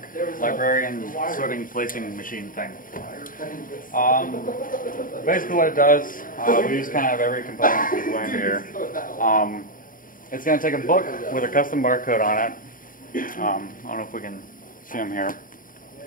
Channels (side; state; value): right; late; 0.40 ms